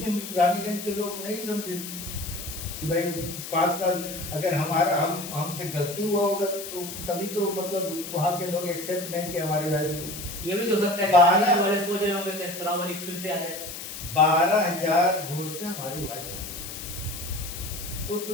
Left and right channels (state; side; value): noise; left; hiss, 9 dB below the sound